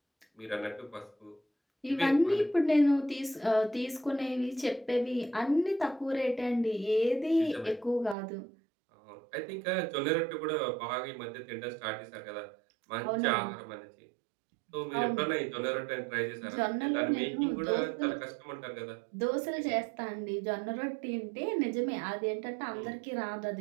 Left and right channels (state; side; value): drops out; left; at 8.2 s